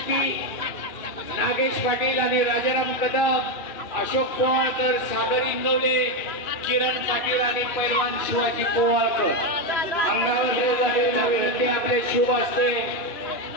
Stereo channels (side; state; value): right; late; 2.9 ms